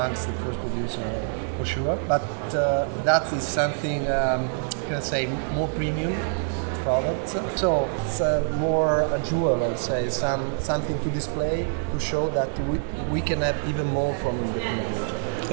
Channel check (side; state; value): left; silent; digital silence